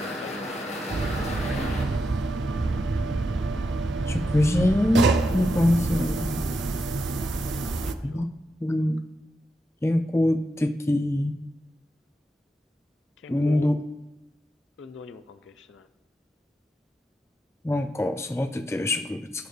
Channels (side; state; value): both; normal; correlation 0.86